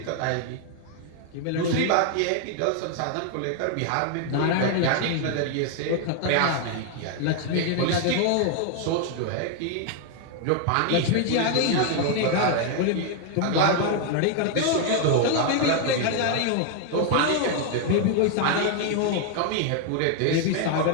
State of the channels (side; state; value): both; different; correlation 0.01